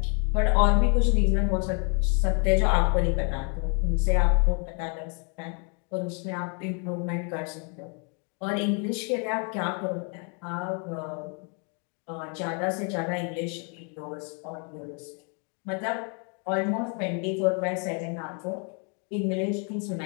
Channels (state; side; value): quieter; right; 38.3 dB